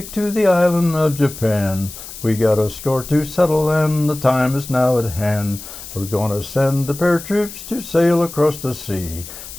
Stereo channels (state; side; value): noise; left; hiss, 13 dB below the sound